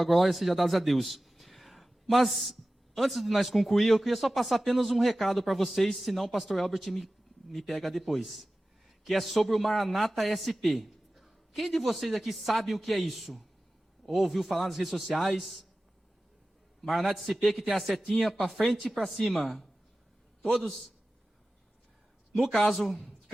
glória seja dada a Deus. Mas, antes de nós concluir, eu queria só passar apenas um recado para vocês, senão o pastor Albert me pega depois. Que é sobre o Maranata SP. Quem de vocês aqui sabe o que é isso? Ou ouviu falar nas redes sociais? Maranata SP, que tem a setinha para frente e para cima. Todos? No caso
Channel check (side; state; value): both; normal; correlation 0.95